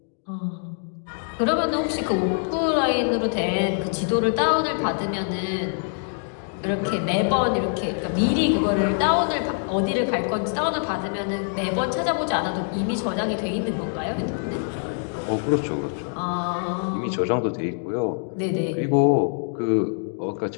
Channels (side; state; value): right; silent; 57 dB below the other